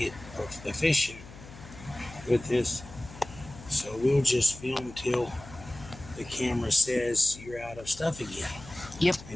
efficient with this. So we'll just film till the camera says you're out of stuff again. Yep.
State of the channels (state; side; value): noise; left; hum, 17 dB below the sound